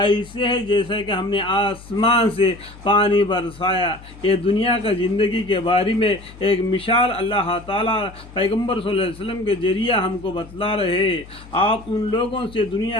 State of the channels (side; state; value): left; noise; hum, 19 dB below the sound